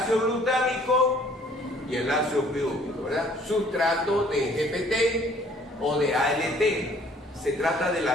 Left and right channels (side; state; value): both; normal; correlation 0.58